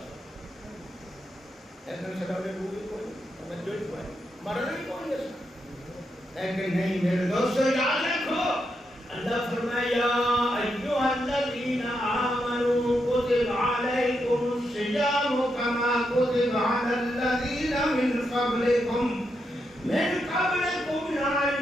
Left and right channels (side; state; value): both; normal; correlation 0.83